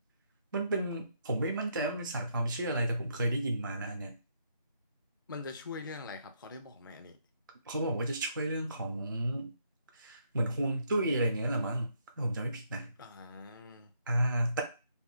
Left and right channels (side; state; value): both; inverted; correlation -0.74